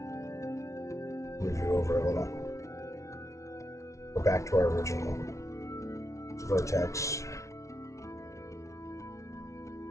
Move you over a little. Go back to our original vertex.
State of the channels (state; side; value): late; right; 0.14 ms